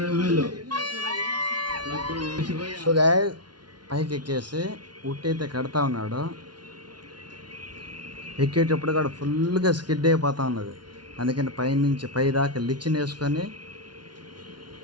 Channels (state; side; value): late; left; 0.70 ms